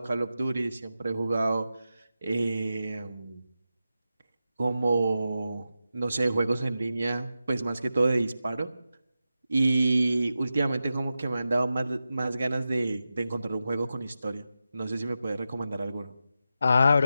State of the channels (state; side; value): inverted; both; correlation -0.91